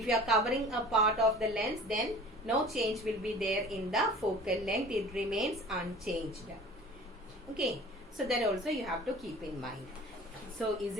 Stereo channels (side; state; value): both; normal; correlation 0.43